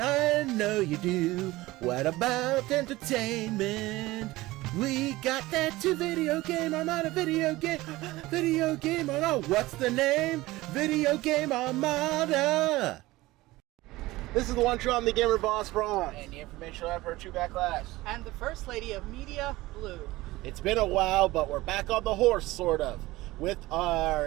I know you do. What about entertainment? We got that to video game. I'm on a video game. Video game. Oh no, what's the name? Video Game Armada. This is the one true I'm the gamer boss Bronze. And the informational effort True Backlash. And the First Lady of Media, Blue. It's been a while, but we're back on the horse, sort of, with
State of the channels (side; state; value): left; quieter; 18.9 dB